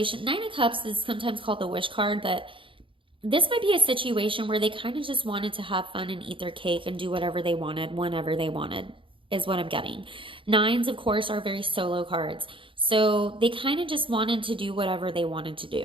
Nine of Cups is sometimes called the wish card, but this might be a situation where they kind of just wanted to have fun and eat their cake and do whatever they wanted, whenever they wanted, is what I'm getting. Nines, of course, are very solo cards. So they kind of just wanted to do whatever they wanted to do.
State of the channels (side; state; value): left; late; 0.25 ms